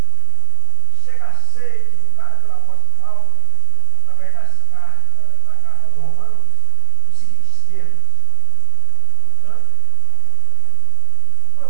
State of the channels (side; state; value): both; different; correlation 0.00